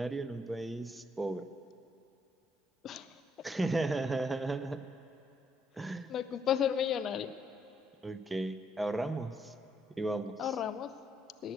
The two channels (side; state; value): both; normal; correlation 0.73